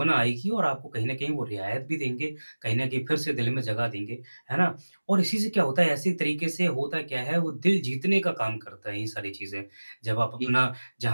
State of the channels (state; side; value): inverted; both; correlation -1.00